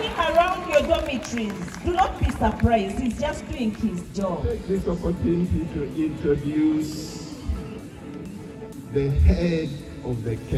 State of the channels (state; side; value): identical; both; correlation 1.00